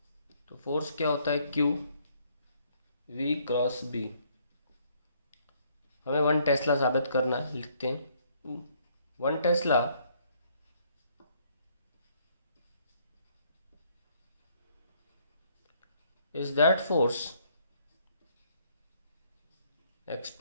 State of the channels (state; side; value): inverted; both; correlation -0.66